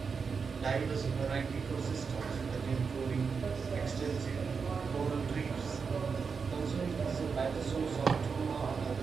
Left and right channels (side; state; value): left; quieter; 5.5 dB